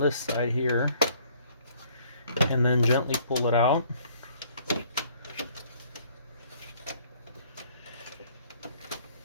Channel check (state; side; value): inverted; both; correlation -0.60